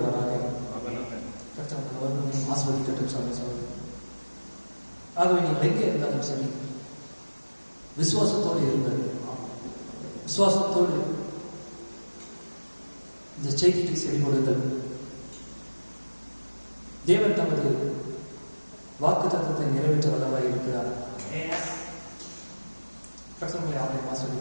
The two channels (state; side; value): inverted; both; correlation -1.00